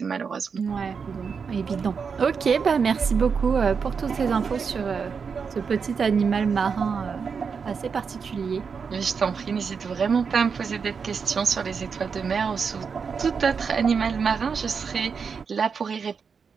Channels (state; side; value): quieter; left; 5.9 dB